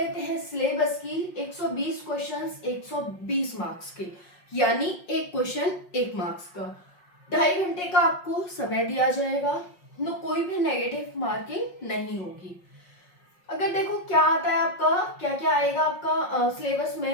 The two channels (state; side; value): late; right; 5.5 ms